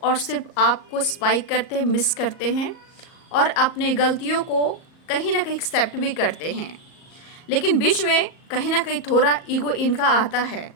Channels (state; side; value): late; right; 38 ms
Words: और सिर्फ आपको स्पाइक करते हैं, मिस करते हैं और अपने गलतियों को कहीं ना कहीं एक्सेप्ट भी करते हैं। लेकिन बीच में कहीं ना कहीं थोड़ा ईगो इनका आता है,